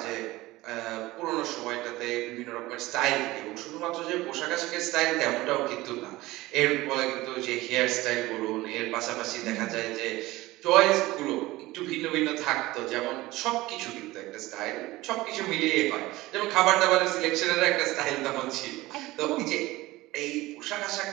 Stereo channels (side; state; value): left; quieter; 18.8 dB